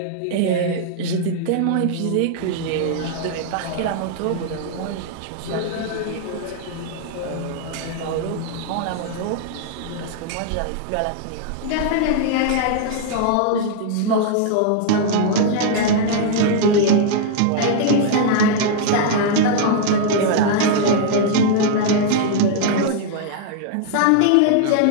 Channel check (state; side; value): different; both; correlation -0.01